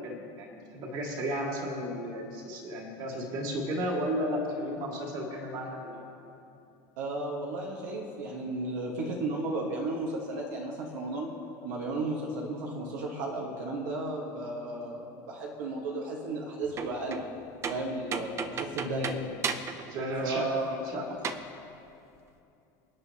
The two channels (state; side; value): normal; both; correlation 0.29